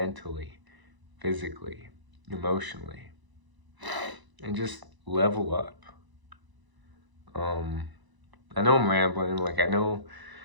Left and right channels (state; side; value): late; left; 1.0 ms